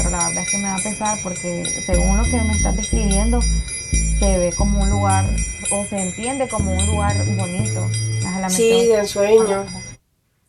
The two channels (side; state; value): both; identical; correlation 1.00